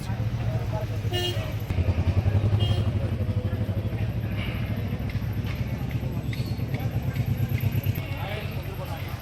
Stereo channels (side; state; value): both; identical; correlation 1.00